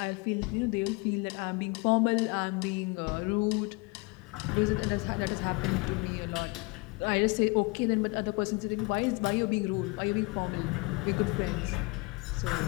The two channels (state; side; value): quieter; right; 27.3 dB